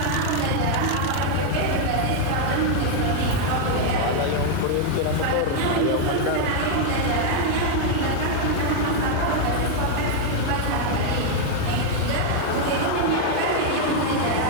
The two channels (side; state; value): both; different; correlation 0.00